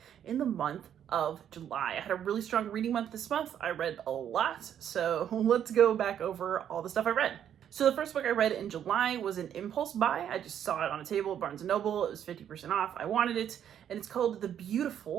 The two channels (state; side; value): quieter; left; 9.6 dB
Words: in the month of July. I had a really strong reading month this month. I read a lot, so let's go back over all the stuff I read. So the first book I read in July was an impulse buy. I just saw it on a table at Barnes & Noble. It was 50% off. I wanted it, and it's called The